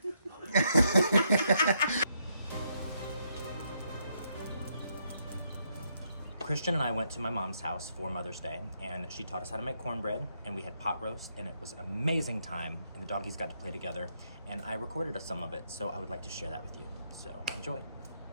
Christian and I went to my mom's house for Mother's Day, and she taught us how to make cornbread, and we had pot roast, and it was an amazing time, and the doggies got to play together, and I recorded some of it, so I would like to share that with you. So enjoy.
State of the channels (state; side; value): inverted; both; correlation -0.76